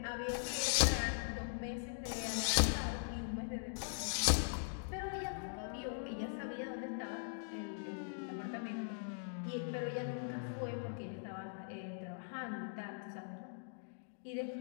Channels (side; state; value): right; silent; digital silence